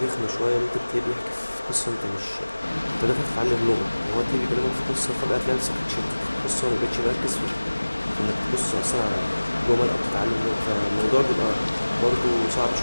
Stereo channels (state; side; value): inverted; both; correlation -1.00